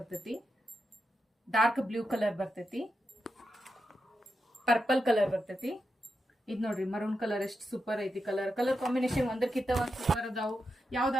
ಡಾರ್ಕ್ ಬ್ಲೂ ಕಲರ್ ಬರ್ತೈತಿ, ಪರ್ಪಲ್ ಕಲರ್ ಬರ್ತೈತಿ. ಇದ್ ನೋಡ್ರಿ, ಮರೂನ್ ಕಲರ್ ಎಷ್ಟು ಸೂಪರ್ ಐತಿ. ಕಲರ್ ಕಾಂಬಿನೇಷನ್ ಒಂದಕ್ಕಿಂತ ಒಂದ್ ಸೂಪರ್ ಅದಾವು.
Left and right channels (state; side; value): normal; both; correlation 0.87